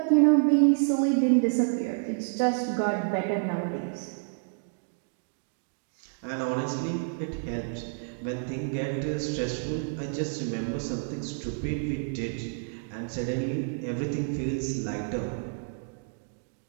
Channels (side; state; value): left; silent; digital silence